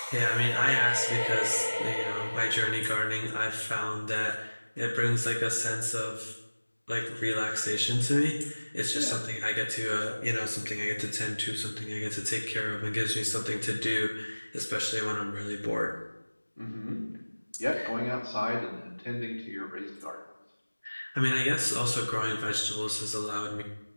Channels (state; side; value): inverted; both; correlation -1.00